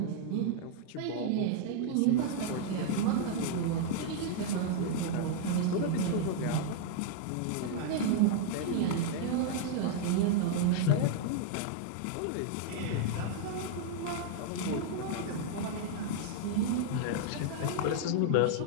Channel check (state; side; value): different; both; correlation -0.01